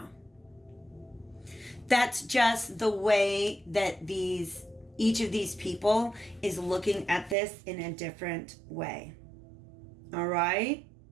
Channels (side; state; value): left; drops out; at 7.4 s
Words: That's just the way that each of these people is looking at this in a different way. All right?